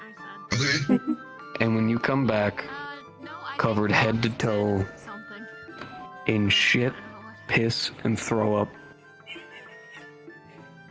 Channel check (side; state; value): both; identical; correlation 1.00